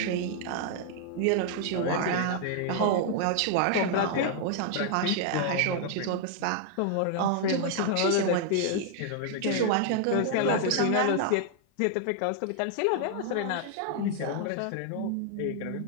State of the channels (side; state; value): both; different; correlation 0.00